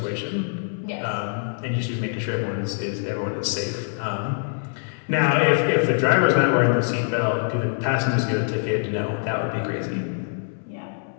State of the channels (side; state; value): right; silent; 63 dB below the other